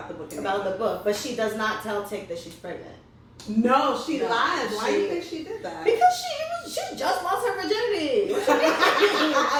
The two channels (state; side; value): identical; both; correlation 1.00